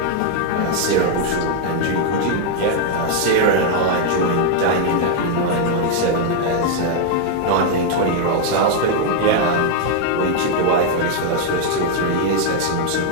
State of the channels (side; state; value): both; different; correlation 0.00